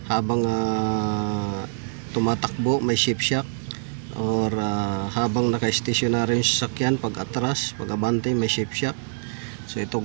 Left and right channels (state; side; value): silent; left; digital silence